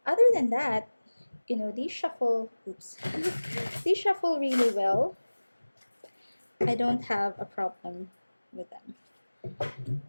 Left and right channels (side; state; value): both; inverted; correlation -1.00